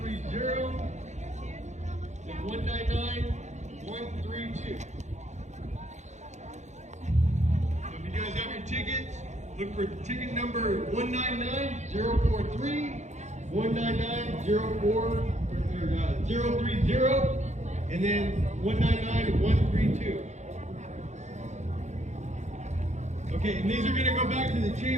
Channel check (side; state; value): left; late; 0.34 ms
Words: 199132. So if you guys have your tickets, look for ticket number 199043, 199030, and then 199132. Okay, and these are going to go back to the